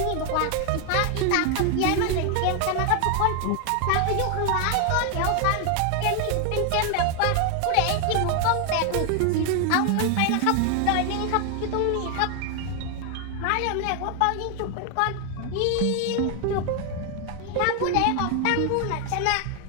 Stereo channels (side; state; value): both; different; correlation 0.01